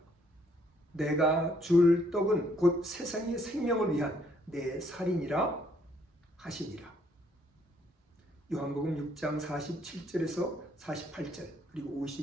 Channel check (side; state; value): both; normal; correlation 0.67